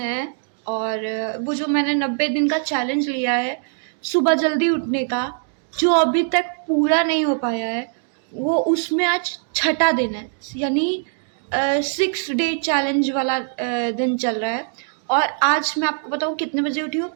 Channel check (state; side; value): silent; left; digital silence